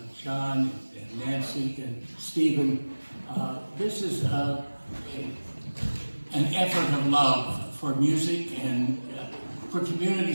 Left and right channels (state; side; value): inverted; both; correlation -1.00